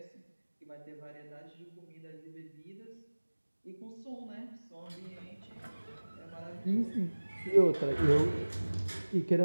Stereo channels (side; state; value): both; inverted; correlation -1.00